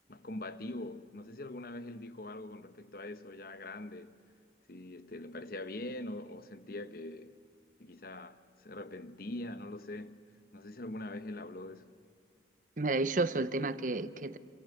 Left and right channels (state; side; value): normal; both; correlation 0.36